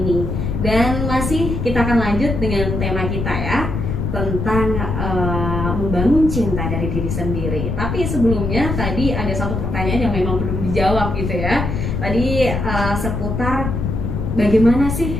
Dan masih kita akan lanjut dengan tema kita ya, tentang membangun cinta dari diri sendiri. Tapi sebelumnya tadi ada satu pertanyaan yang memang belum dijawab gitu ya. Tadi seputar bagaimana sih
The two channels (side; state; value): left; noise; rumble, 2 dB below the sound